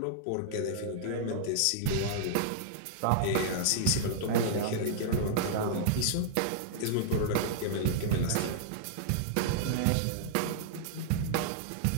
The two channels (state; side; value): different; both; correlation -0.01